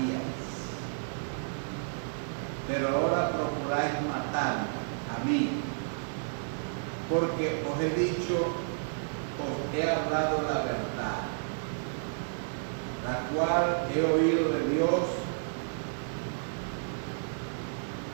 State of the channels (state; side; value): silent; left; digital silence